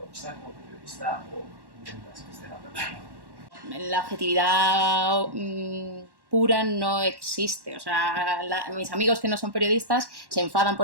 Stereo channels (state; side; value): late; left; 1.1 ms